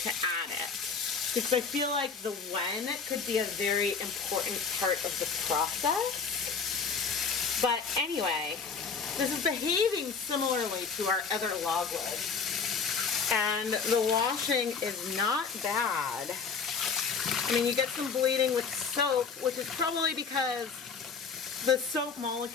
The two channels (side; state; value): right; quieter; 5.4 dB